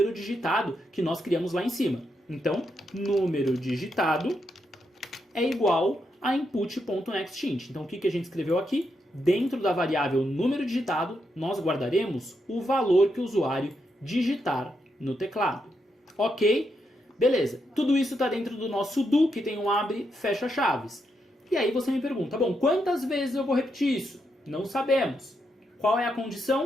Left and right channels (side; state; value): both; normal; correlation 0.82